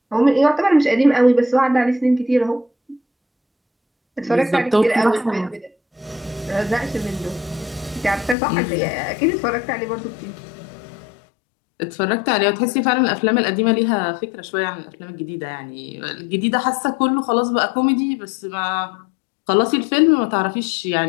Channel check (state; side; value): drops out; right; at 8.3 s